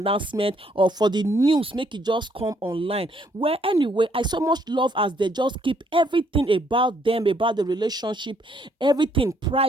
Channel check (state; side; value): normal; both; correlation 0.69